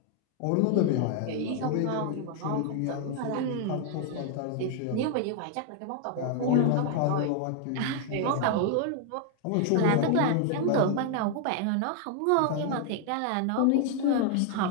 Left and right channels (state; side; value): different; both; correlation 0.00